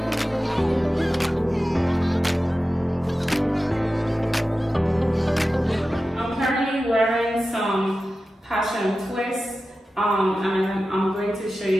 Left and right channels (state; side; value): normal; both; correlation 0.94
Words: I'm currently wearing some passion twists and I'm going to show